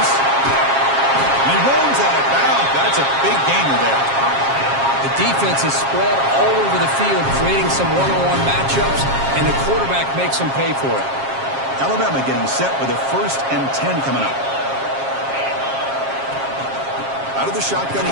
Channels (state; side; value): late; left; 7.4 ms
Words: He rolls out of bounds. That's a big gainer there. The defense is spread all over the field, creating some one-on-one matchups, and the quarterback makes them pay for it. Alabama getting set with a 1st and 10 coming up. Out of the shotgun, he